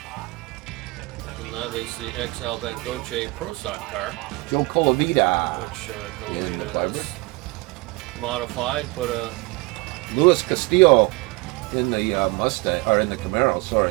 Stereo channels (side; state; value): left; quieter; 24.2 dB